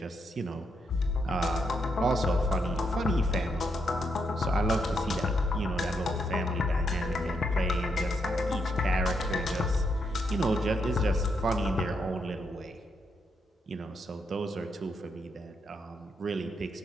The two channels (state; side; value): normal; both; correlation 0.79